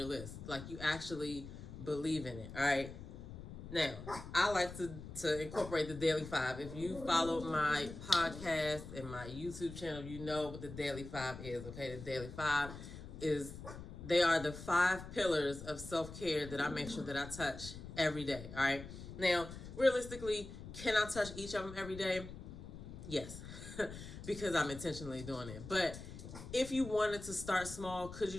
list. Like, you actually believe in it, all right? Now, I like to incorporate the Daily 5. If you follow my podcast and my YouTube channel, you know what the Daily 5 is, okay? The Daily 5 they are the 5 pillars of self-care that I make sure that I touch every day, all right? Now, realistically, can I touch each of them every day? Yes, because I'm intentionally doing it. But if you wanted to start small, could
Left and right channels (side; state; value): left; noise; rumble, 11 dB below the sound